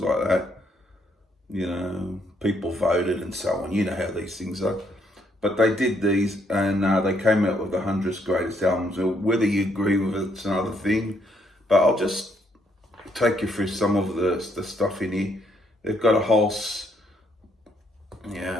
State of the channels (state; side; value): normal; both; correlation 0.72